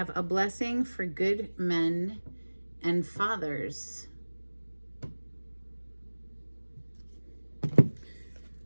a blessing for good men and fathers.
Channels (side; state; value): both; inverted; correlation -1.00